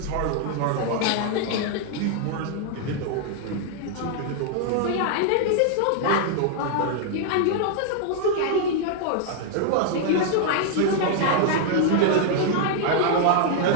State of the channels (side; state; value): both; different; correlation -0.01